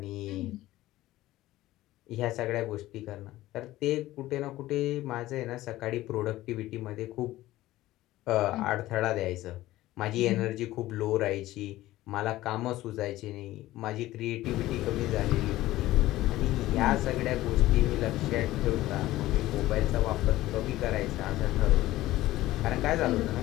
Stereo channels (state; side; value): quieter; right; 16.2 dB